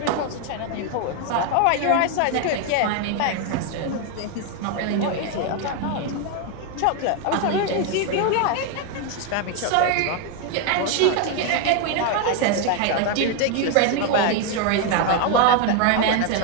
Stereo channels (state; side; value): different; both; correlation 0.01